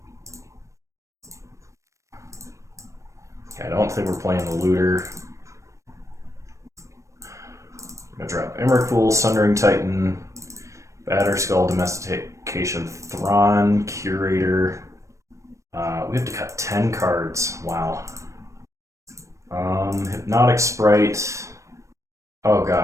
Okay, I don't think we're playing the Looter. I'm going to drop Emrakul, Sundering Titan, Batterskull, Domestication, Thrawn, Curator. We have to cut 10 cards. Wow. Hypnotic Sprite. Oh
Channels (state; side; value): late; left; 0.15 ms